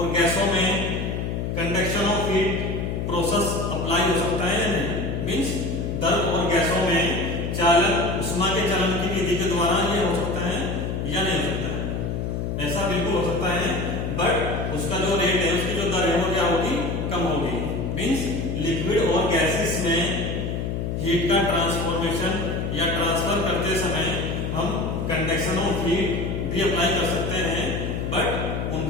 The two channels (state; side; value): noise; left; hum, 2 dB below the sound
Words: गैसों में conduction of heat process apply हो सकता है या नहीं? मींस द्रव और गैसों में चालन, ऊष्मा के चलन की विधि के द्वारा ये हो सकता है या नहीं हो सकता है? ऐसा बिल्कुल हो सकता है, बट उसका जो रेट है, उसकी जो दर है वो क्या होगी? कम होगी। मींस लिक्विड और गैसेस में हीट का ट्रांसफॉर्मेशन या ट्रांसफर करते समय हम कंडक्शन ऑफ हीट भी अप्लाई कर सकते हैं, बट